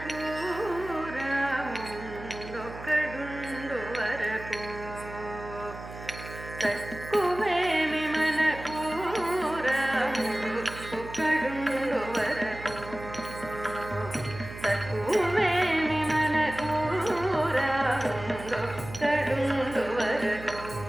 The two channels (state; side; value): noise; right; hum, 12 dB below the sound